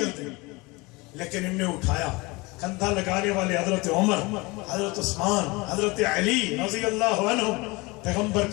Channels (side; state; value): right; quieter; 24.5 dB